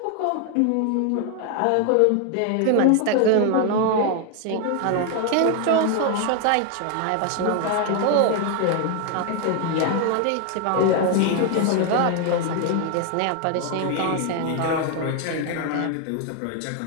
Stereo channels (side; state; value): both; different; correlation 0.01